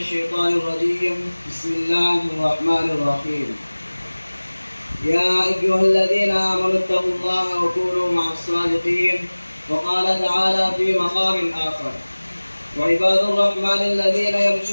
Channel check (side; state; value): both; inverted; correlation -1.00